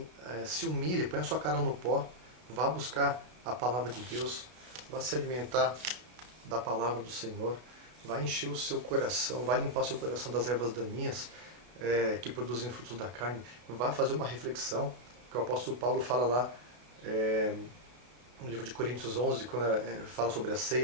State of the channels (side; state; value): left; late; 33 ms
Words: Se humilhe, põe a sua cara no pó, vá buscar a palavra de Deus, vá se alimentar da palavra do Senhor, vá encher o seu coração, vá limpar o seu coração das ervas daninhas que produzem frutos da carne, vá fazer uma reflexão, que o apóstolo Paulo fala lá no livro de Coríntios 11, quando fala sobre a